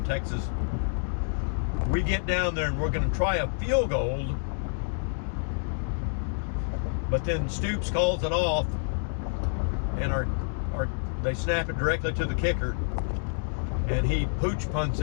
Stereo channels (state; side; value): silent; right; digital silence